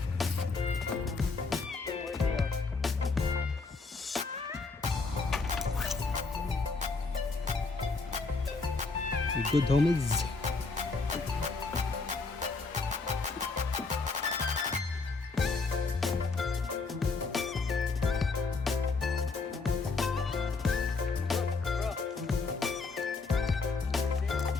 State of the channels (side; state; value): right; quieter; 4.1 dB